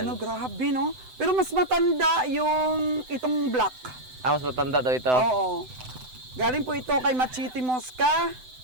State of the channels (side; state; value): left; late; 7.9 ms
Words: no, grabe, no? Pero mas matanda yung itong black. Mas matanda daw ito. Oo. Galing po ito kay Machiti Mosca.